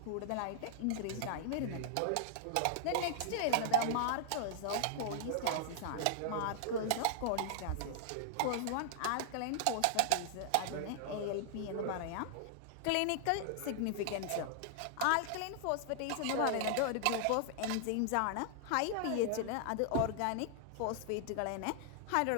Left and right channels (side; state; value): both; different; correlation -0.01